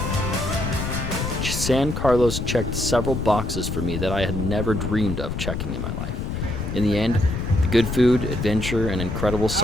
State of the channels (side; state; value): left; noise; rumble, 4 dB below the sound